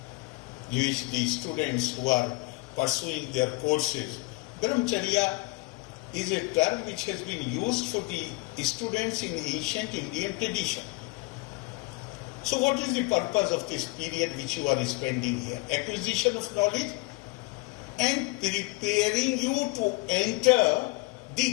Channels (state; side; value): quieter; right; 24.8 dB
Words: which the students who are pursuing their courses. Brahmacharya is a term which has been used for the students in ancient Indian tradition. So what is the purpose of this period which you are spending here? Acquisition of knowledge and preparing you to enter